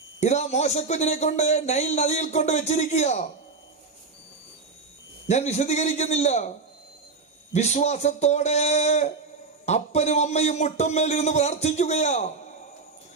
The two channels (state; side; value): quieter; left; 4.4 dB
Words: ഇതാ മോശക്കുഞ്ഞിനെ കൊണ്ട് നൈൽ നദിയിൽ കൊണ്ട് വെച്ചിരിക്കുക. ഞാൻ വിശദീകരിക്കുന്നില്ല. വിശ്വാസത്തോടെ അപ്പനും അമ്മയും മുട്ടമ്മേലിരുന്ന് പ്രാർത്ഥിക്കുകയാ.